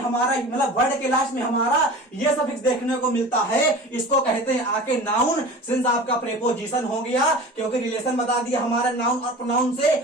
मतलब वर्ड के लास्ट में हमारा ये सफिक्स देखने को मिलता है, इसको कहते हैं आके नाउन। सिंस आपका प्रेपोजिशन हो गया, क्योंकि रिलेशन बता दिया हमारा नाउन और प्रोनाउन से,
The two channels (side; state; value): both; normal; correlation 0.37